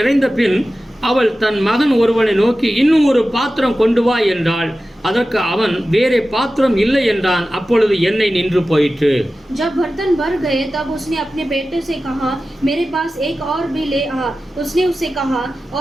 பின் அவள் தன் மகன் ஒருவனை நோக்கி, இன்னும் ஒரு பாத்திரம் கொண்டு வா என்றாள். அதற்கு அவன், வேறே பாத்திரம் இல்லை என்றான். அப்பொழுது எண்ணெய் நின்று போயிற்று. जब बर्तन भर गए तब उसने अपने बेटे से कहा, मेरे पास एक और भी ले आ. उसने उससे कहा,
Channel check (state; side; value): normal; both; correlation 0.94